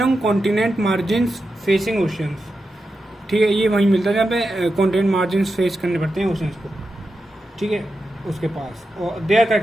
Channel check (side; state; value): both; normal; correlation 0.89